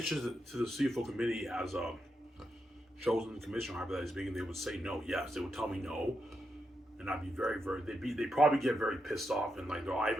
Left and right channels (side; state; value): both; normal; correlation 0.84